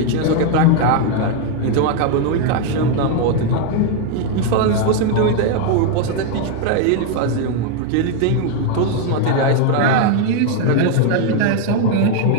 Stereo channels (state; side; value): different; both; correlation 0.01